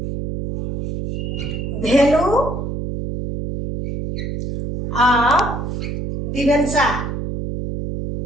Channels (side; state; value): right; noise; hum, 4 dB below the sound